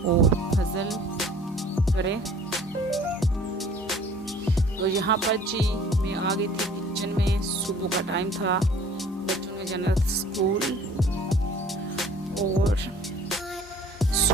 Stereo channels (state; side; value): normal; both; correlation 0.51